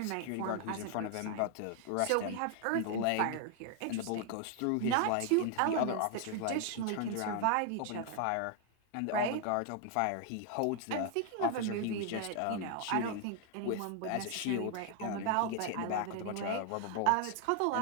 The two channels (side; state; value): both; different; correlation 0.00